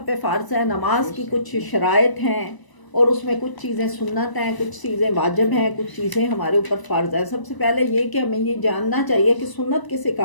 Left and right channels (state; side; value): late; right; 1.0 ms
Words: پہ فرض ہے۔ نماز کی کچھ شرائط ہیں، اور اس میں کچھ چیزیں سنت ہیں، کچھ چیزیں واجب ہیں، کچھ چیزیں ہمارے اوپر فرض ہے۔ سب سے پہلے یہ کہ ہمیں یہ جاننا چاہیے کہ سنت کسے